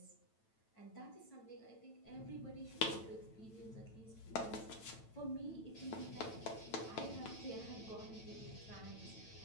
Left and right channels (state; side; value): late; right; 9.0 ms